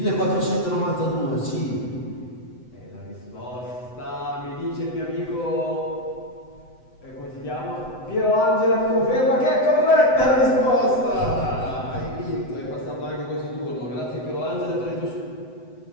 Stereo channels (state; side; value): late; right; 7.9 ms